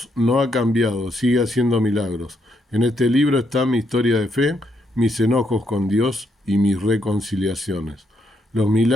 no ha cambiado, sigue haciendo milagros. En este libro está mi historia de fe, mis enojos con Dios y mis reconciliaciones. Los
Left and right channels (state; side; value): normal; both; correlation 0.77